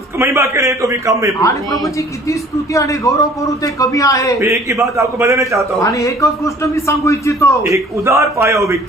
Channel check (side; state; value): both; normal; correlation 0.52